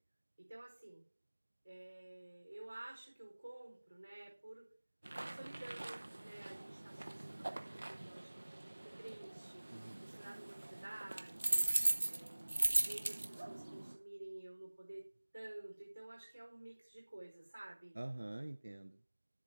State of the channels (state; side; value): inverted; both; correlation -1.00